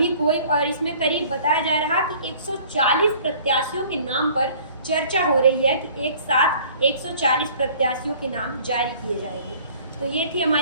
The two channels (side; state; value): both; inverted; correlation -0.52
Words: कोई, और इसमें करीब बताया जा रहा कि 140 प्रत्याशियों के नाम पर चर्चा हो रही है कि एक साथ 140 प्रत्याशियों के नाम जारी किए जाएंगे। तो ये थी